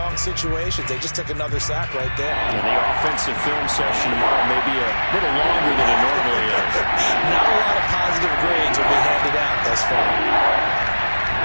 situations. They just took another sack right there. And the offensive film session tomorrow may be a little longer than it normally is. Not a lot of positive grades will be handed out thus far.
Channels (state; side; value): inverted; both; correlation -1.00